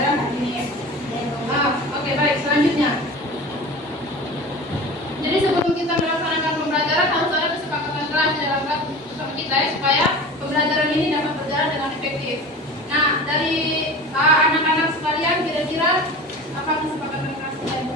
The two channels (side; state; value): both; normal; correlation 0.35